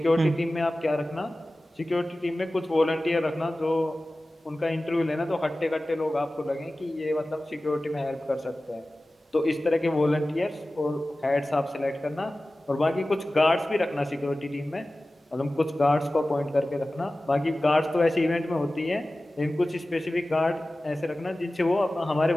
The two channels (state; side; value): normal; both; correlation 0.96